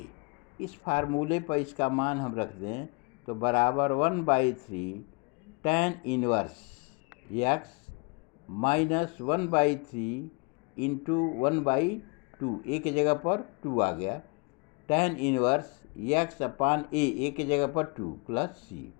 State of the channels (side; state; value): right; quieter; 31.3 dB